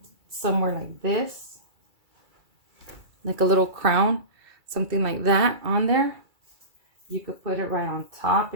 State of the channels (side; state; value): left; late; 2.3 ms